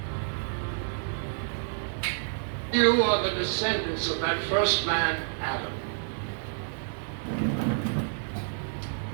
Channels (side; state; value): left; silent; digital silence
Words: You are the descendants of that first man, Adam.